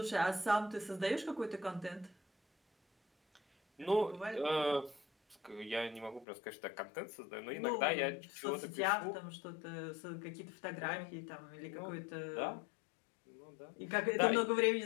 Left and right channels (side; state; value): right; drops out; at 6.2 s